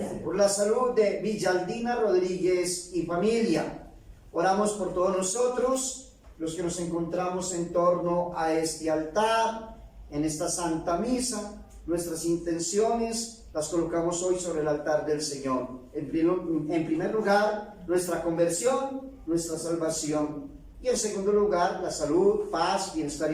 Por la salud de Villaldina Rodríguez y familia, oramos por todos nosotros, los que nos encontramos en torno a este altar, en esta Santa Misa. Nuestras intenciones las colocamos hoy sobre el altar del Señor. En primer lugar, nuestra conversión, nuestra salvación. Y en segundo lugar, la salud, paz, bienestar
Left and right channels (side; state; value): both; identical; correlation 1.00